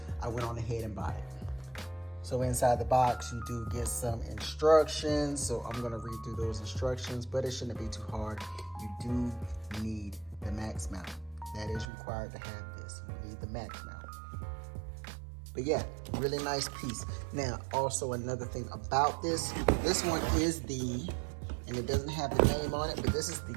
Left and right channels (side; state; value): left; drops out; at 11.9 s